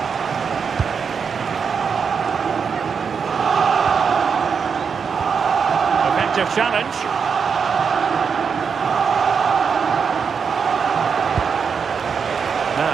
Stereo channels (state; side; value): quieter; left; 6.2 dB